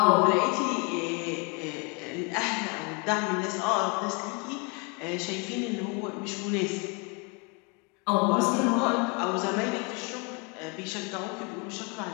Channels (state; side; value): quieter; right; 32.5 dB